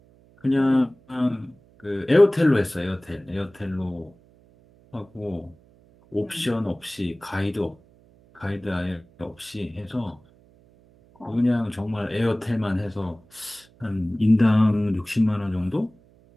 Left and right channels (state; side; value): noise; right; hum, 29 dB below the sound